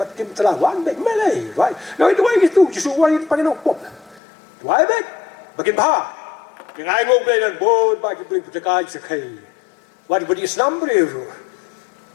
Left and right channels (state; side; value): drops out; right; at 4.2 s